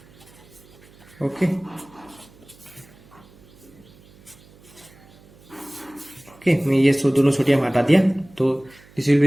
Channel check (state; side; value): noise; right; hum, 26 dB below the sound